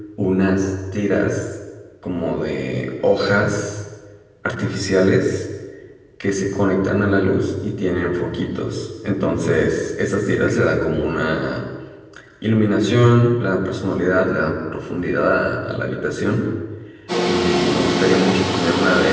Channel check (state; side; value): identical; both; correlation 1.00